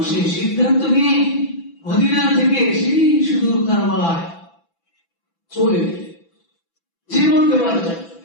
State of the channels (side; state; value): right; late; 6.0 ms